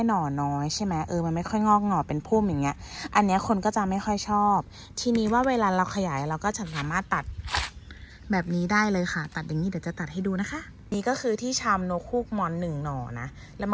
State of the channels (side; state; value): both; identical; correlation 1.00